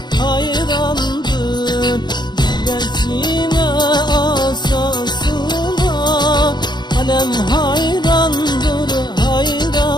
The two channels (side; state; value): right; late; 0.21 ms